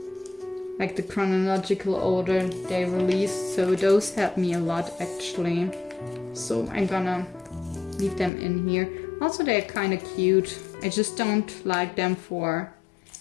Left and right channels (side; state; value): right; drops out; at 8.3 s